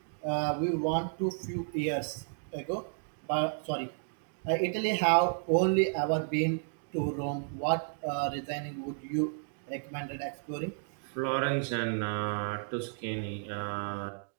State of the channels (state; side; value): silent; left; digital silence